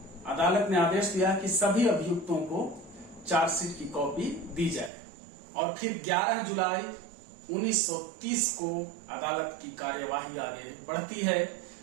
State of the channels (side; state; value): left; drops out; at 4.9 s